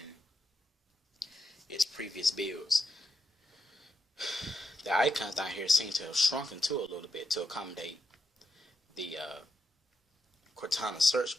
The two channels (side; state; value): both; normal; correlation 0.83